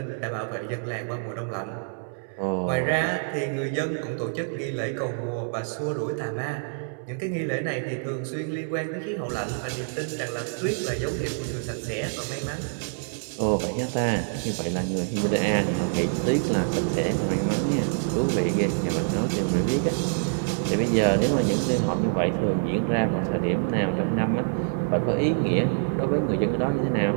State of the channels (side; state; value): left; silent; 61 dB below the other